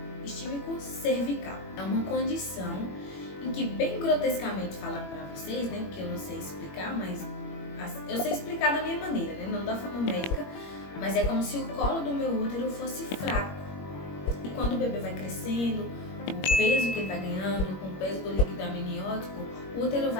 É uma condição em que, bem grotescamente falando para vocês, né, porque eu não sei explicar, mas eu sei explicar da minha maneira, né, não da forma médica, mas é como se o colo do meu útero fosse fraco. E quando o bebê vai crescendo, o peso que ele vai ganhando, com o peso do líquido amniótico, o útero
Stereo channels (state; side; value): late; right; 21 ms